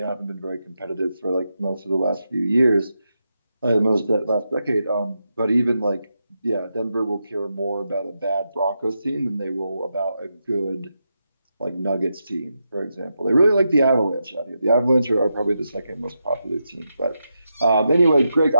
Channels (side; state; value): both; inverted; correlation -0.86